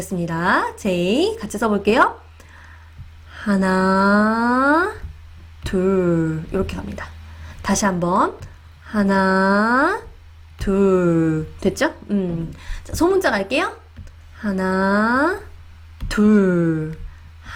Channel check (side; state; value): both; identical; correlation 1.00